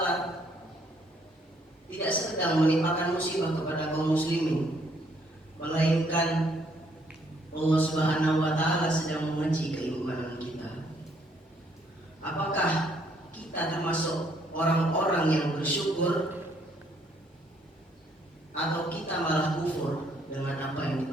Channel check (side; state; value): both; normal; correlation 0.68